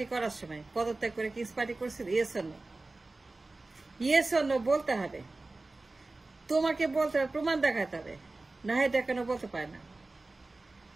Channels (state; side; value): quieter; left; 3.2 dB